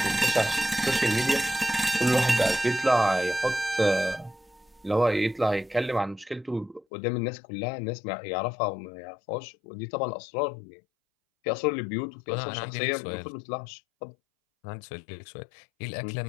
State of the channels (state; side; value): drops out; right; at 6.9 s